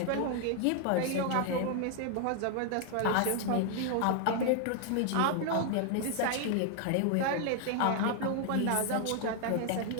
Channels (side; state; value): both; different; correlation 0.00